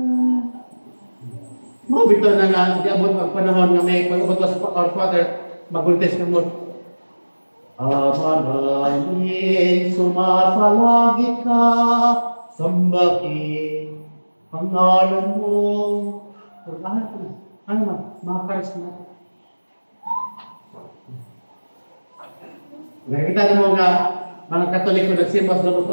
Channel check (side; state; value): both; inverted; correlation -1.00